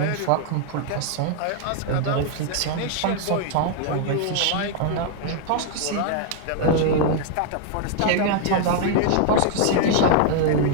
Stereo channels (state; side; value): different; both; correlation 0.00